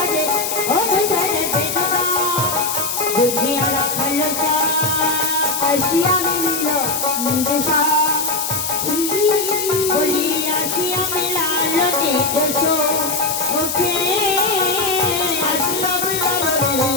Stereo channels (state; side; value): noise; left; hiss, 3 dB below the sound